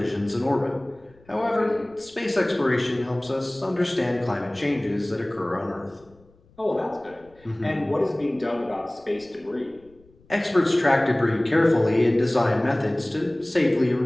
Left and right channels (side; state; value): left; noise; rumble, 29 dB below the sound